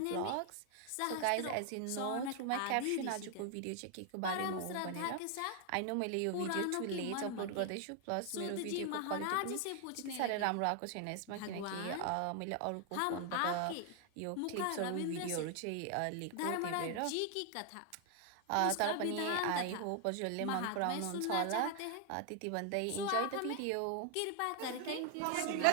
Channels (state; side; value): different; both; correlation 0.00